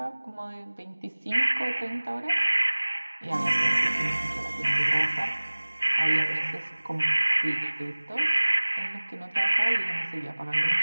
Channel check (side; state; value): both; inverted; correlation -1.00